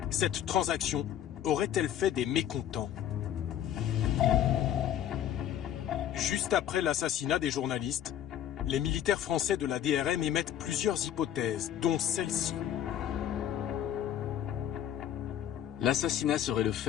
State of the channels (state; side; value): quieter; right; 10.6 dB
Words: Cette transaction aurait-elle fait des mécontents? Juste après l'assassinat des journalistes, les militaires français de la DRM émettent plusieurs hypothèses, dont celle-ci. L'assassinat serait le